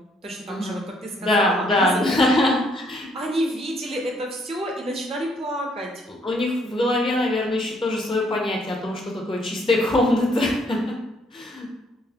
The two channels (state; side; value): normal; both; correlation 0.68